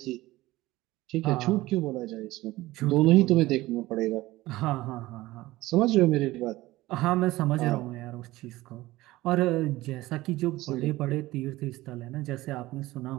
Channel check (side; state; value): left; quieter; 18.1 dB